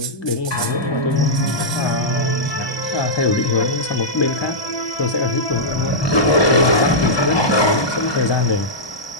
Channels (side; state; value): right; late; 1.2 ms